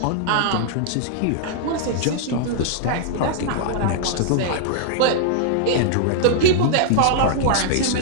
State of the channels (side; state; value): both; different; correlation -0.01